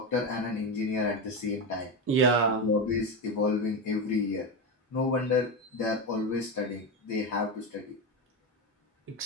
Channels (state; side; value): normal; both; correlation 0.14